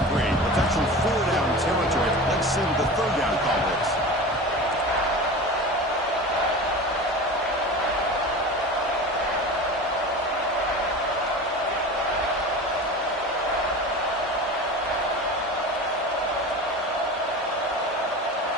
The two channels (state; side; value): normal; both; correlation 0.32